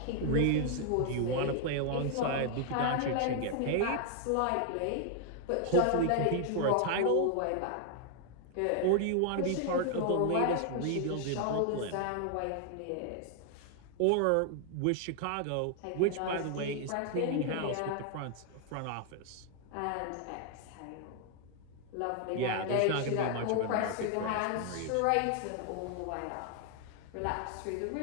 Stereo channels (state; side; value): different; both; correlation 0.00